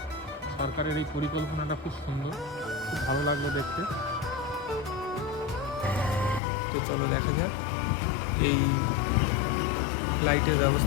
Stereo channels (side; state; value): right; drops out; at 6.4 s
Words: সরকারের এই পরিকল্পনাটা খুব সুন্দর, খুব ভালো লাগলো দেখতে। তো চলো দেখা যাক এই লাইটের